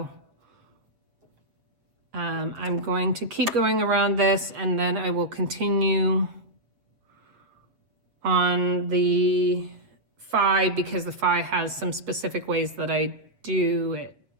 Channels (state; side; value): late; left; 7.4 ms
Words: I'm going to keep going around this, and then I will continue on the phi, because the phi has some specific ways that I do it.